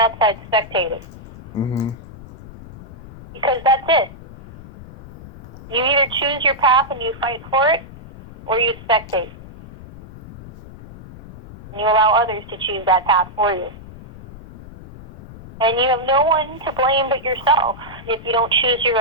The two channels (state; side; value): noise; left; rumble, 15 dB below the sound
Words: outside spectating? Mm-hmm. Because that's it. You either choose your path and you fight for it, or you spectate. And you allow others to choose that path for you. And you have no one to blame but yourself if you don't choose your